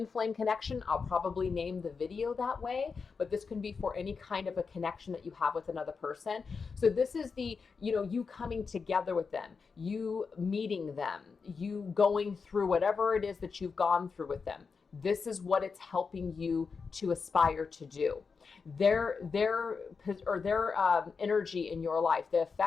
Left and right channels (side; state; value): right; quieter; 5.2 dB